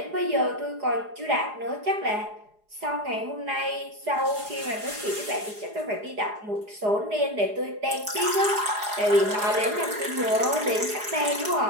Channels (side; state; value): left; late; 4.8 ms